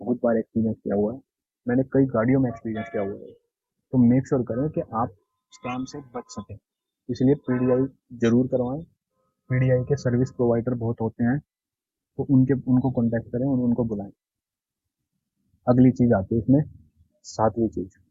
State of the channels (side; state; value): both; identical; correlation 1.00